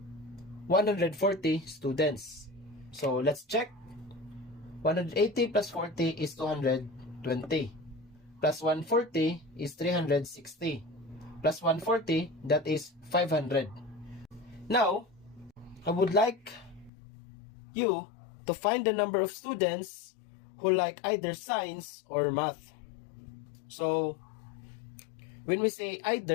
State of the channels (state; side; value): drops out; right; at 16.9 s